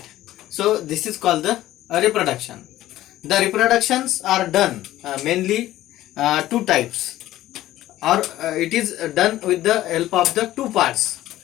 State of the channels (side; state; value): right; quieter; 14.7 dB